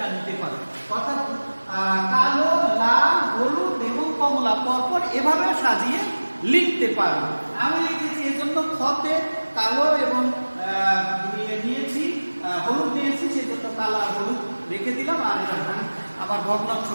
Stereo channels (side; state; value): both; inverted; correlation -1.00